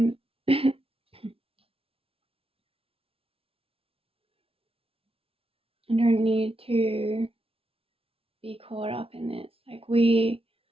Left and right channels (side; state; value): left; late; 0.27 ms